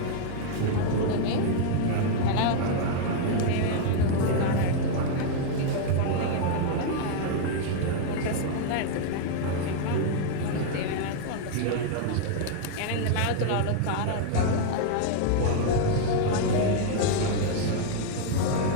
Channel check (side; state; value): both; different; correlation 0.00